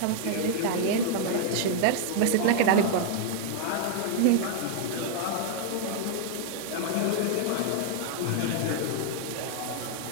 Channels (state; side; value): different; both; correlation 0.00